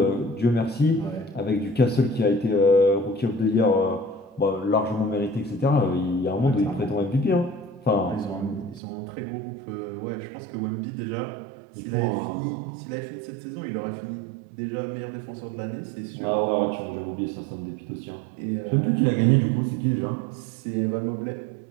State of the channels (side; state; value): left; drops out; at 8.8 s